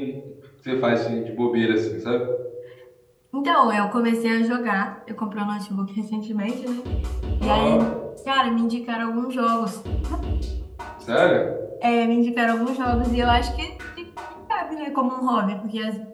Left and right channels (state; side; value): identical; both; correlation 1.00